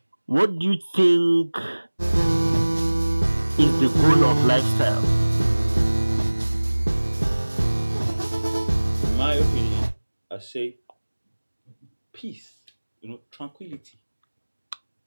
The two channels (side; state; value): both; inverted; correlation -1.00